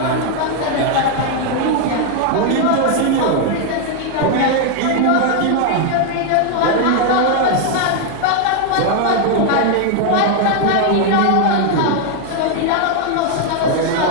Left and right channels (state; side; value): different; both; correlation 0.00